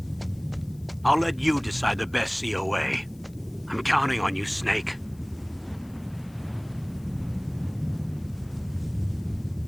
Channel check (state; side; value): noise; left; hiss, 27 dB below the sound